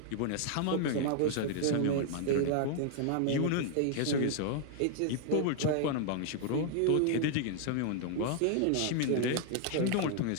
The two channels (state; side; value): different; both; correlation 0.00